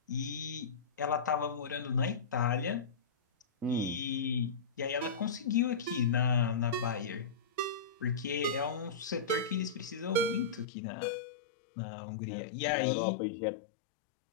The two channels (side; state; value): right; drops out; at 10.7 s